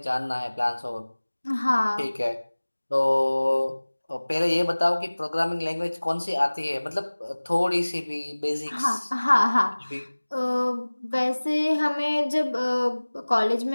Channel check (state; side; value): inverted; both; correlation -1.00